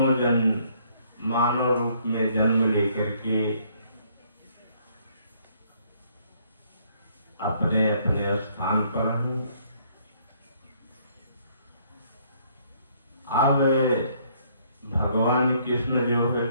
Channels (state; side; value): inverted; both; correlation -0.65